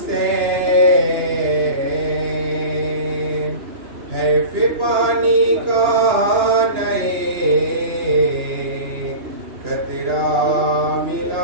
حیف پانی کا نئے قطرہ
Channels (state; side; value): late; left; 2.9 ms